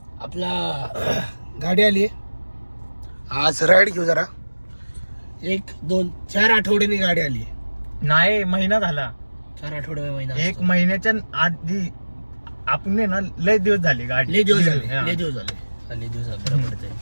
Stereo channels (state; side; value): inverted; both; correlation -1.00